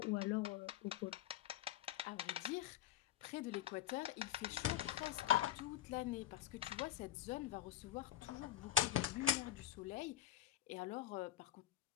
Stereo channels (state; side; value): quieter; right; 12.0 dB